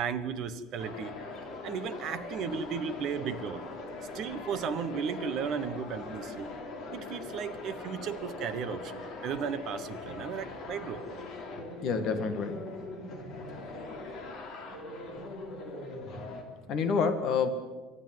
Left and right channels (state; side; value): normal; both; correlation 0.44